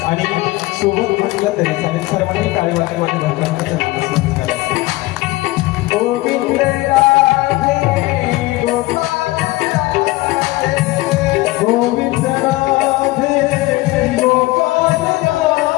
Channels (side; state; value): right; quieter; 19.6 dB